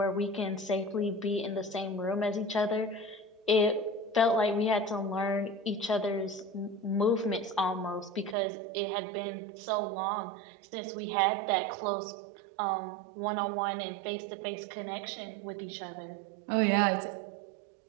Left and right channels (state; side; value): drops out; left; at 8.3 s